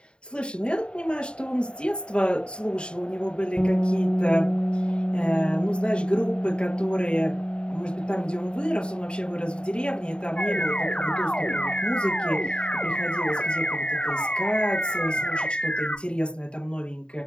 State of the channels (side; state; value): right; late; 0.052 ms